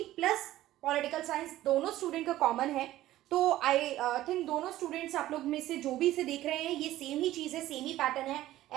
plus political science दोनों स्टूडेंट का कॉमन है. तो आई थिंक दोनों स्टूडेंट्स आप लोग में से जो भी इसे देख रहे हैं ये सेम ही चीज़ है, सेम ही पैटर्न है.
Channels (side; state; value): left; quieter; 14.8 dB